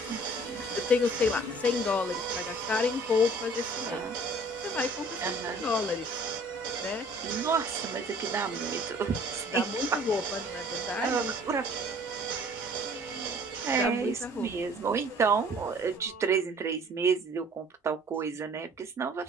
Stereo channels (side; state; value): both; normal; correlation 0.53